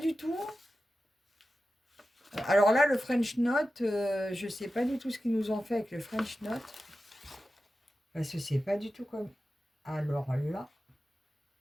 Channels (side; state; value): both; normal; correlation 0.93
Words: du tout. Alors là, le French Note, je ne sais pas du tout ce qu'ils nous ont fait avec le French Note. Parce que c'est pas du tout comme... Alors là...